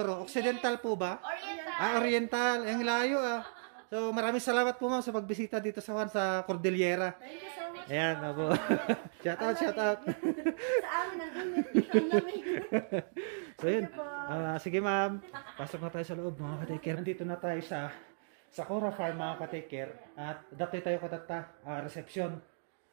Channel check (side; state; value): left; silent; digital silence